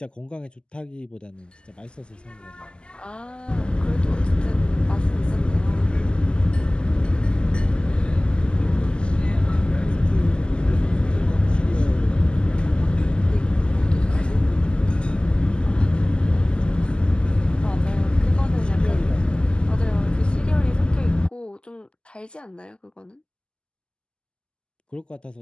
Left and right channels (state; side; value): late; right; 0.049 ms